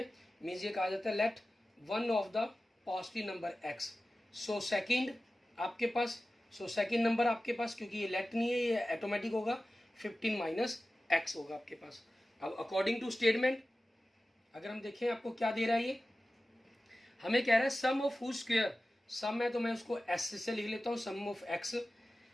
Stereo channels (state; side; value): normal; both; correlation 0.95